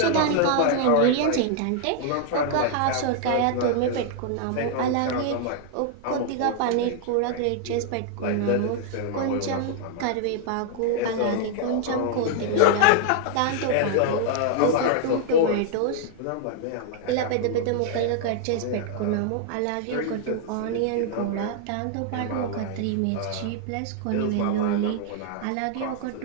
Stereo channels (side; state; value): both; different; correlation -0.01